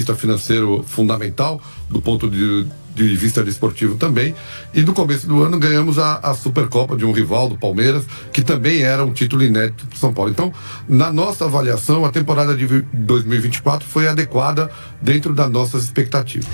financeiro fundamental, do ponto de vista desportivo também. E no começo do ano ganhamos a Supercopa de um rival do Palmeiras, que também era um título inédito para São Paulo. Então, na nossa avaliação, a temporada de 2024 foi adequada dentro das nossas expectativas.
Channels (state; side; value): inverted; both; correlation -1.00